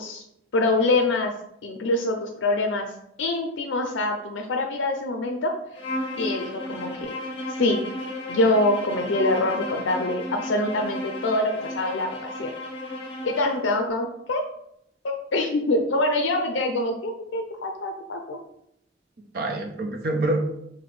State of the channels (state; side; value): normal; both; correlation 0.02